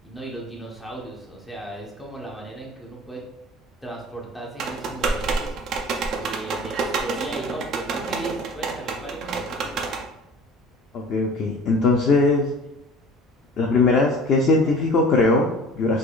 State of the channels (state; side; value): normal; both; correlation 0.44